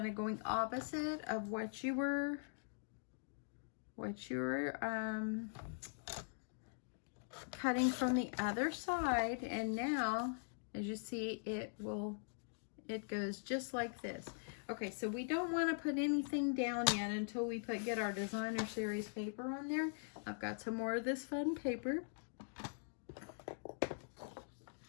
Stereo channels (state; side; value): silent; right; digital silence